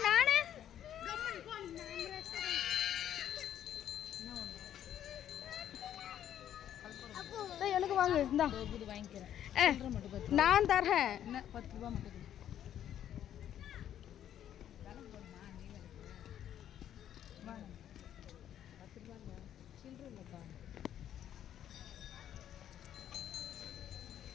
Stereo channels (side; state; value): right; quieter; 10.6 dB